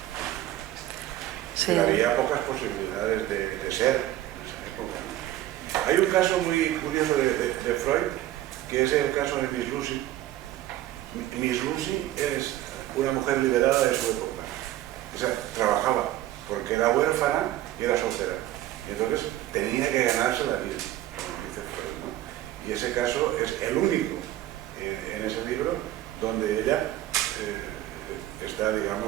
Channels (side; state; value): left; quieter; 14.1 dB